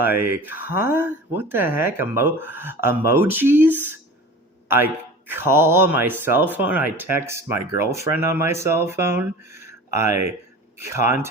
huh? What the heck? Emojis? I call on my cell phone. I text my girlfriend on my cell phone. I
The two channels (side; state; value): both; normal; correlation 0.38